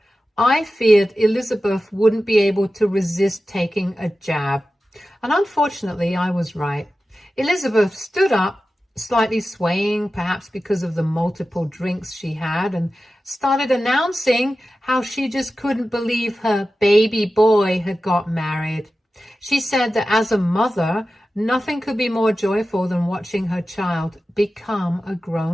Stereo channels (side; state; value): both; normal; correlation 0.94